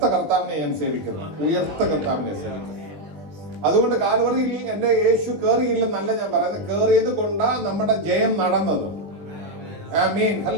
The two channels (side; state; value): left; late; 20 ms